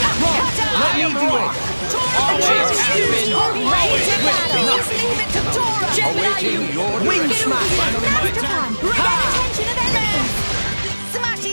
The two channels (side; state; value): both; inverted; correlation -1.00